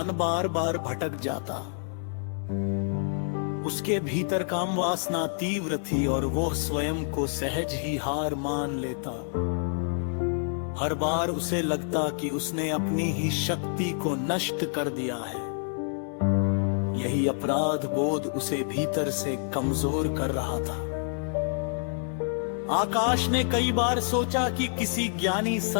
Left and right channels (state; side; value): silent; right; 59 dB below the other